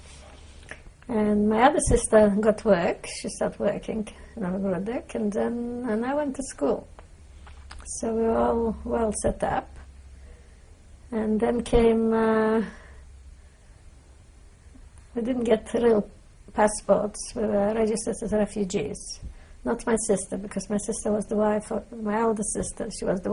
And my other sister got work. She started working in Novgorod, and I went to school. So we were all well set up. And then came, we didn't get real passports. We were registered as refugees. Not my sister, because my sister was the wife of my older sister. She was the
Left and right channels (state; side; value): identical; both; correlation 1.00